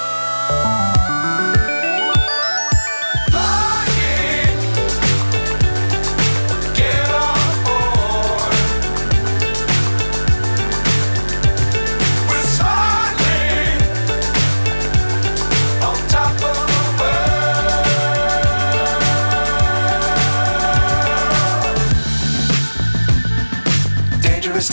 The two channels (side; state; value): both; inverted; correlation -1.00